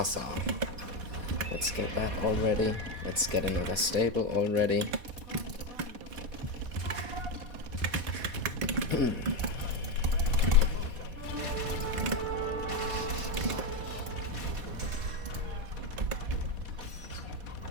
Let's get that already. Let's get another stable already.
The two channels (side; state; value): left; late; 4.1 ms